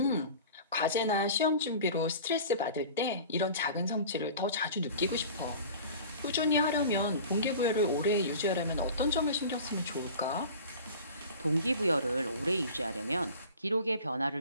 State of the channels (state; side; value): inverted; both; correlation -0.40